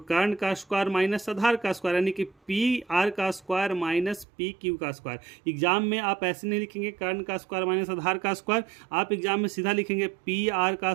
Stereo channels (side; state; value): left; drops out; at 4.2 s